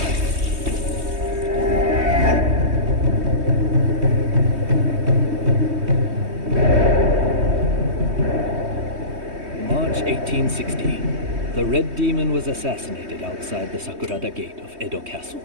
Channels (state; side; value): late; left; 3.2 ms